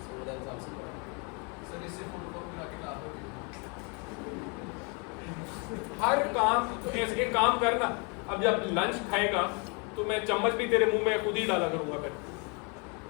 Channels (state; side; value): quieter; right; 33.7 dB